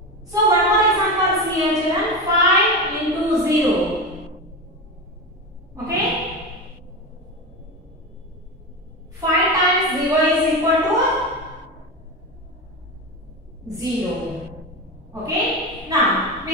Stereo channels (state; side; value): normal; both; correlation 0.20